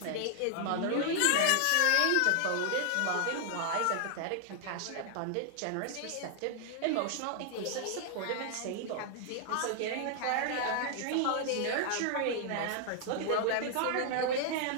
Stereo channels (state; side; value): different; both; correlation 0.00